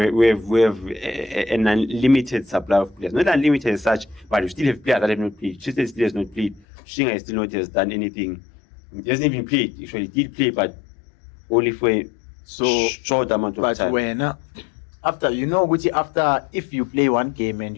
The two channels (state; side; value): drops out; right; at 6.6 s